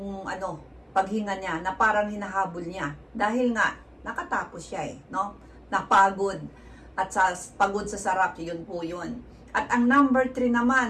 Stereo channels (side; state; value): both; identical; correlation 1.00